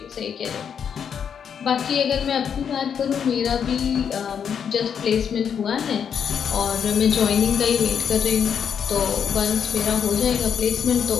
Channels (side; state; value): right; quieter; 7.6 dB